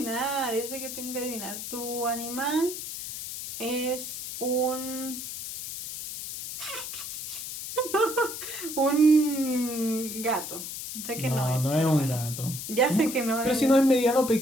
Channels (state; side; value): noise; left; hiss, 7 dB below the sound